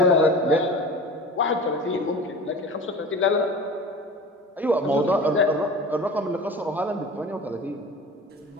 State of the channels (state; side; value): normal; both; correlation 0.36